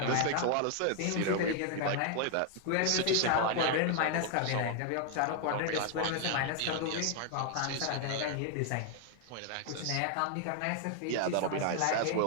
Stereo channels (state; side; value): different; both; correlation 0.00